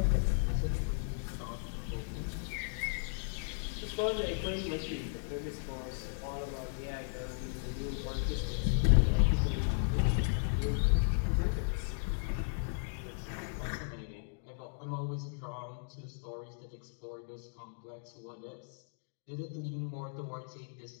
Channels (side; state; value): right; silent; digital silence